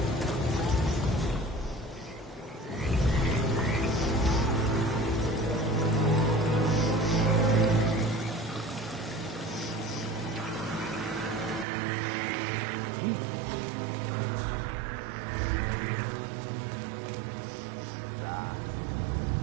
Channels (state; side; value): drops out; left; at 11.7 s